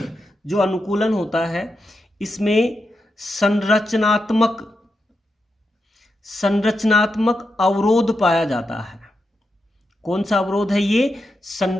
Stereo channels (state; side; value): normal; both; correlation 0.86